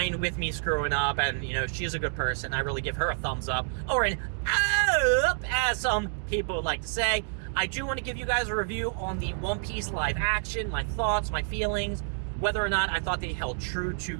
with me screwing up, and, you know, she's a good person. I really give her a thumbs up, or an up, as some people would like to say. I do want to give you guys a review on the One Piece live action, my thoughts, my feelings, whether or not I thought they held true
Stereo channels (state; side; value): silent; left; digital silence